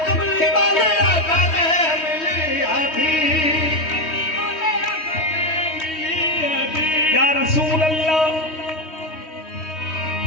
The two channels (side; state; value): right; late; 3.2 ms